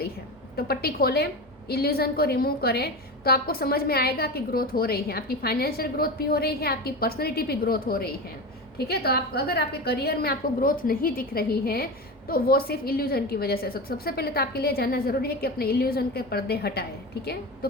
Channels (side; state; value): both; normal; correlation 0.24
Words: है, तो पट्टी खोलें, इल्यूजन को रिमूव करें, तो आपको समझ में आएगा कि ग्रोथ हो रही है। आपकी फाइनेंशियल ग्रोथ भी हो रही है, आपकी पर्सनैलिटी भी ग्रोथ हो रही है, ठीक है। तो आप अगर आपके करियर में आपको ग्रोथ नहीं दिख रही है तो वो सिर्फ इल्यूजन की वजह से। सबसे पहले तो आपके लिए जानना ज़रूरी है कि अपने इल्यूजन के पर्दे हटाएं, ठीक है। तो